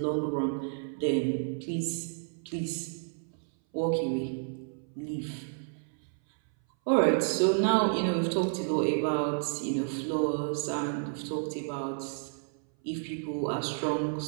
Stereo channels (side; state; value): left; silent; 57 dB below the other